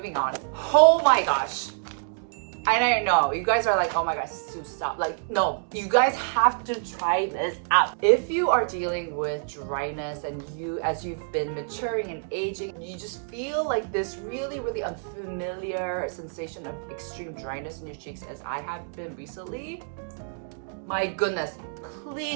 on. Oh my gosh. I know, you guys are like, oh my gosh, Sue, stop. Like, no, you guys have to try this out. If you are dealing with dryness and as you've been maturing and aging, you just feel like this really unfamiliar sensation of extreme dryness in your cheeks as I have been recently, my goodness,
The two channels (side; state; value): left; silent; digital silence